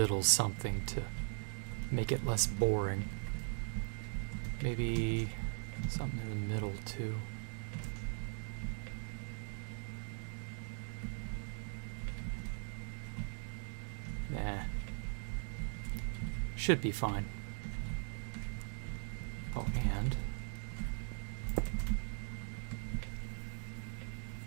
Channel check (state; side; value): silent; left; 51 dB below the other